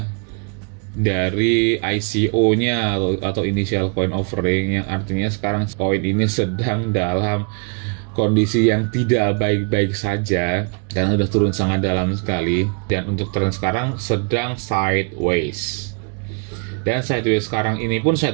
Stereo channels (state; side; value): quieter; left; 38.6 dB